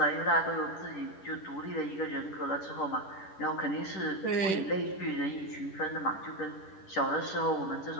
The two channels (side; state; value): right; late; 10 ms